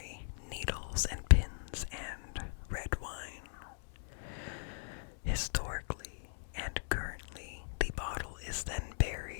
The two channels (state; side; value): silent; right; 52 dB below the other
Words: needles and pins, and red wine. Historically and currently, the bottle is then